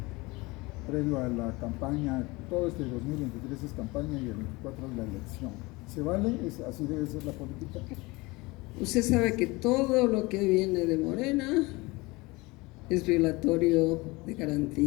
previo a la campaña. Todo este 2023 es campaña y el 24 es la elección. ¿Se vale? ¿Así debe ser la política? Usted sabe que todo lo que viene de Morena es violatorio de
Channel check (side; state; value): right; quieter; 23.4 dB